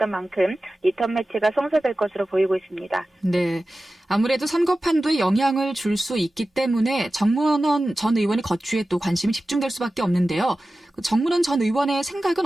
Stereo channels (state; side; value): normal; both; correlation 0.95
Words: 만큼 리턴 매치가 성사될 것으로 보이고 있습니다. 네, 아무래도 선거 판도에 영향을 줄 수 있기 때문에 정문원 전 의원의 거취에 또 관심이 집중될 수밖에 없는데요. 정문원 전 의원의 생각은